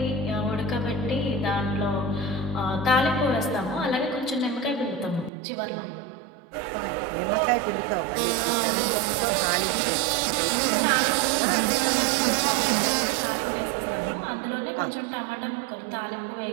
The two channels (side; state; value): left; drops out; at 5.3 s